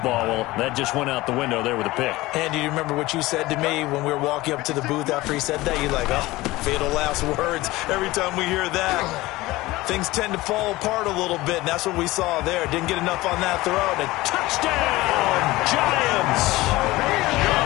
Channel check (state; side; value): quieter; right; 19.1 dB